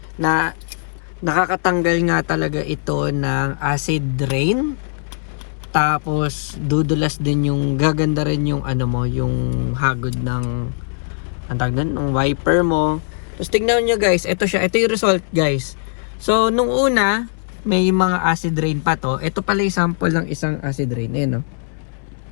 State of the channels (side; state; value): right; silent; 65 dB below the other